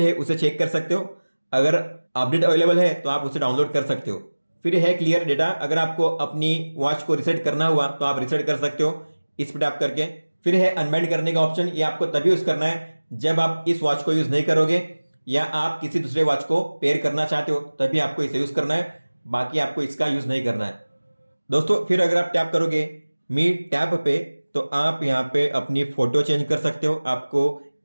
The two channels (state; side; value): inverted; both; correlation -1.00